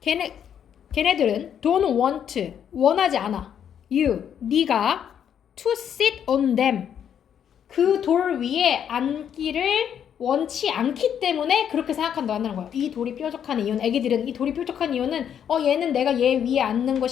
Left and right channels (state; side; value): quieter; right; 8.8 dB